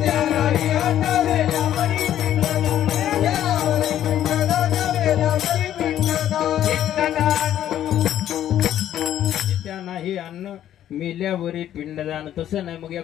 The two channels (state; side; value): quieter; right; 11.4 dB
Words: नाही अन्न मेल्यावरी पिंडदान. तसं नाही, मग या